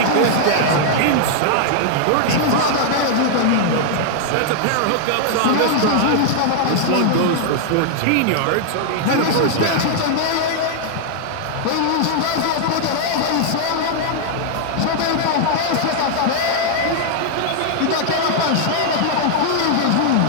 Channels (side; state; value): both; different; correlation 0.00